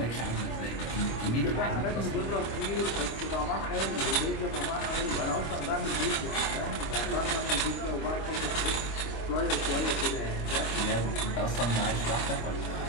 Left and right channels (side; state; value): right; late; 25 ms